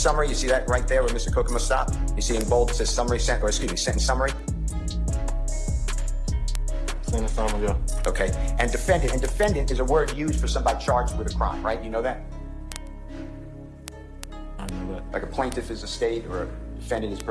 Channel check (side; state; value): both; identical; correlation 1.00